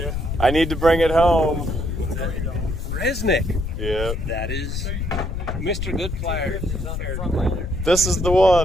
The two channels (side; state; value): left; noise; rumble, 4 dB below the sound